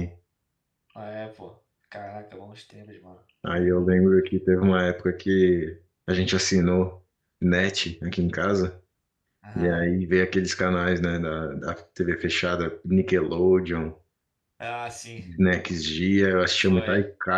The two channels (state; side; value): identical; both; correlation 1.00